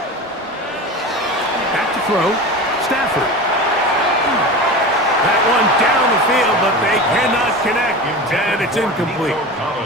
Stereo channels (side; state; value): both; normal; correlation 0.30